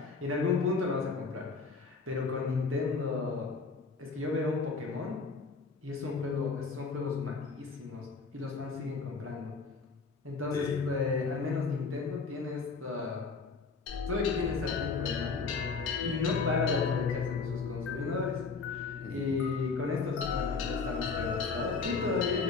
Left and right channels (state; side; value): quieter; right; 4.6 dB